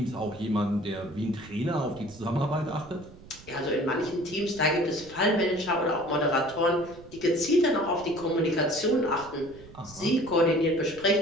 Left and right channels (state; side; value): noise; right; rumble, 20 dB below the sound